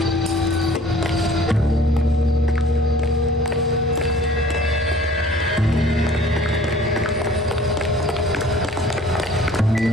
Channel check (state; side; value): normal; both; correlation 0.50